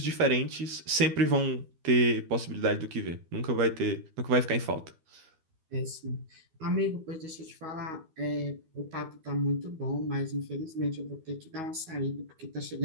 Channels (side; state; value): left; late; 12 ms